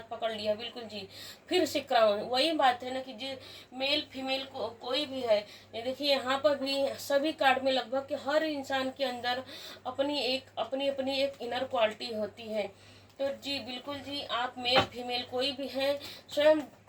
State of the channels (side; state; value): both; identical; correlation 1.00